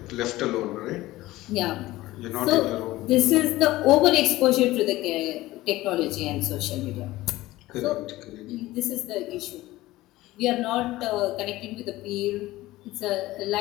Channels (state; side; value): quieter; right; 17.6 dB